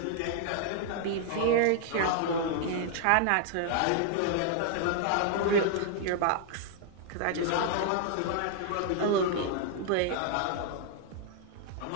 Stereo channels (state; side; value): different; both; correlation 0.00